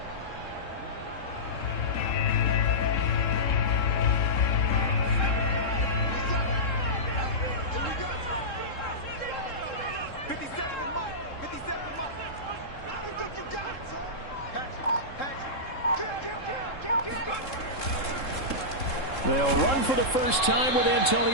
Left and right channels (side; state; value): right; late; 3.7 ms